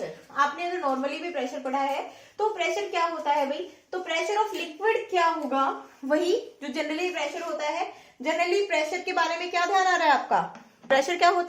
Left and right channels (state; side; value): identical; both; correlation 1.00